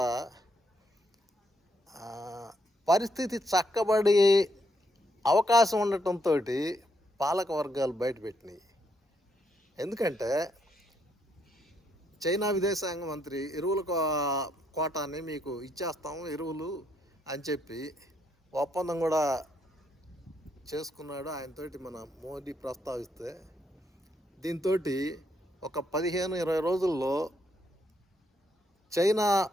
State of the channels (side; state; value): both; normal; correlation 0.75